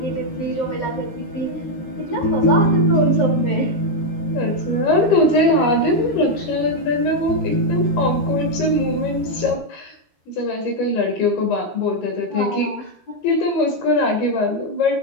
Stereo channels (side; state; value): right; late; 13 ms